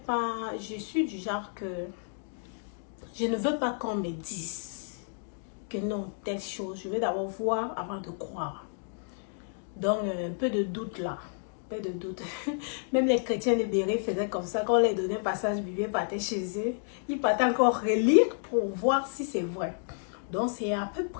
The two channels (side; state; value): right; silent; digital silence